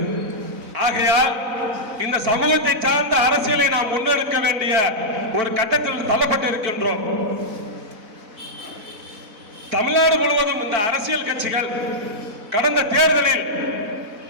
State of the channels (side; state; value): left; late; 4.0 ms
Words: ஆகையால் இந்த சமூகத்தை சார்ந்த அரசியலை நாம் முன்னெடுக்க வேண்டிய ஒரு கட்டத்தில் தள்ளப்பட்டு இருக்கின்றோம். தமிழ்நாடு முழுவதும் இந்த அரசியல் கட்சிகள் கடந்த தேர்தலில்